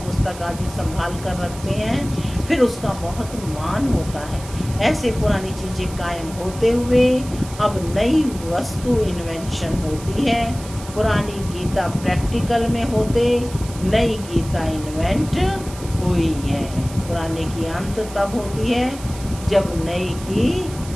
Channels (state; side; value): noise; right; hiss, 16 dB below the sound